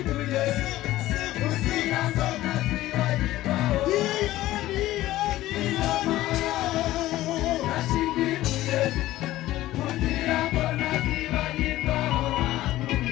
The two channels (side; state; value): right; quieter; 15.6 dB